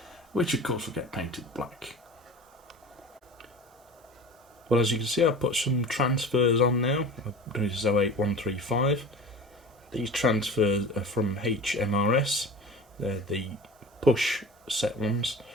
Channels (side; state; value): both; normal; correlation 0.36